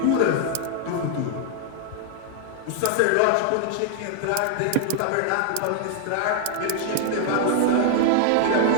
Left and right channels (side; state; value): both; different; correlation 0.00